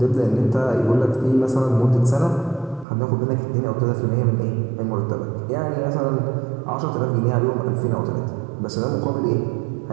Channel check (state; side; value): drops out; left; at 2.9 s